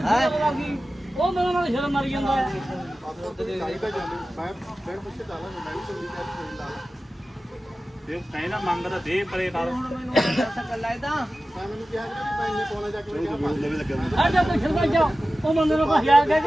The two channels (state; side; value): normal; both; correlation 0.95